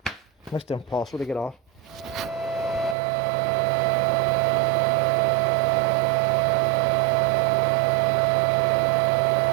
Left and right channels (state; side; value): drops out; left; at 3.0 s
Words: Next to impossible to get off.